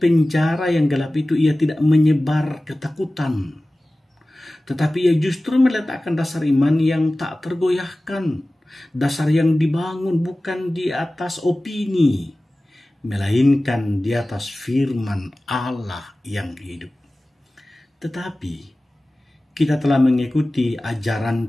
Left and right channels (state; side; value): normal; both; correlation 0.97